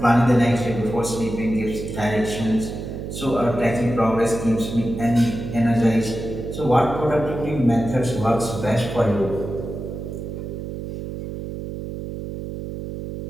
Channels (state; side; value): noise; right; hum, 7 dB below the sound